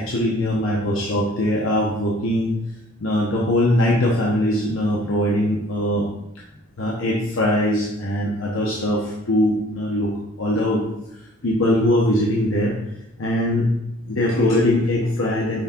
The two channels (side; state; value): both; normal; correlation 0.54